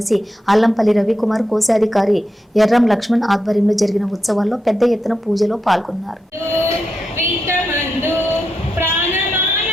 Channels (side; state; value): both; normal; correlation 0.86